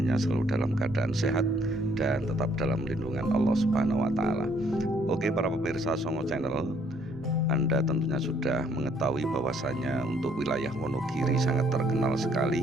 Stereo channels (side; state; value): both; normal; correlation 0.65